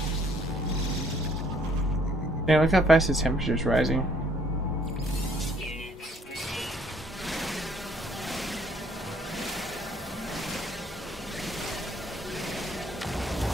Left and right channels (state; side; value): normal; both; correlation 0.63